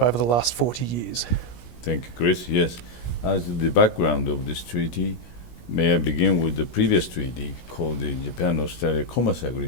the last 40 years? Thank you, Chris. Yes, as the background of this treaty, may I begin with the previous treaty called the Japan-Australia Commerce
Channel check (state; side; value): late; right; 17 ms